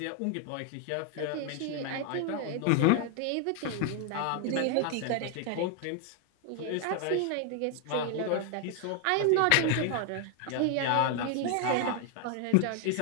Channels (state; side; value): different; both; correlation 0.00